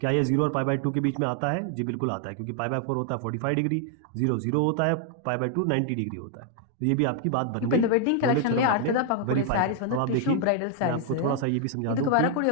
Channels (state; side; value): different; both; correlation 0.00